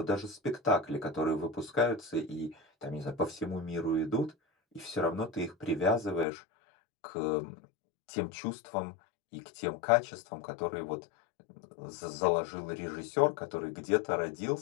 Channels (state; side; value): drops out; right; at 6.2 s